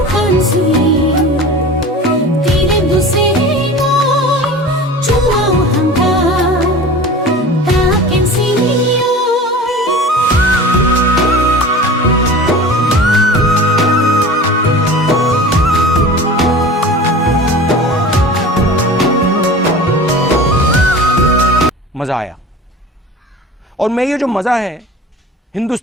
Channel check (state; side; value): normal; both; correlation 0.37